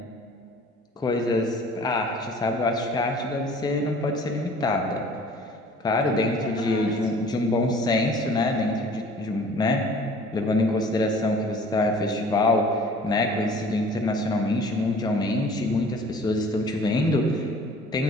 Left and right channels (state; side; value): normal; both; correlation 0.49